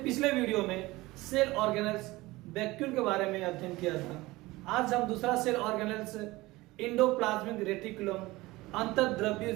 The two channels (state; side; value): quieter; left; 20.0 dB